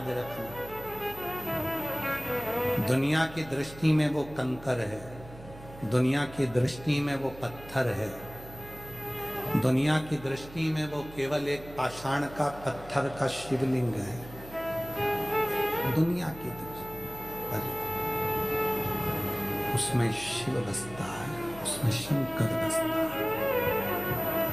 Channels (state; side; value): noise; right; hum, 17 dB below the sound